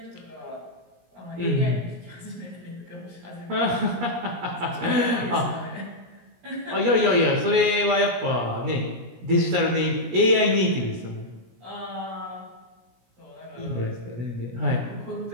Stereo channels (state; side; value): late; left; 17 ms